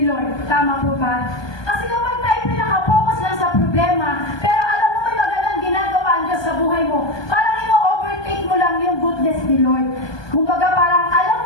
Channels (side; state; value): right; late; 1.2 ms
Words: Lord. Tama po ba? Kasi kapag tayo pinaka-focus lang sa problema, pero alam mo may magandang ginagawa ang Diyos sa buhay mo, parang ino-overtake mo lang yung goodness ni Lord. Kumbaga parang alam